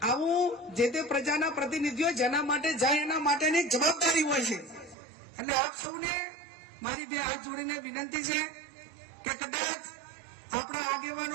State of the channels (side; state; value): left; drops out; at 5.0 s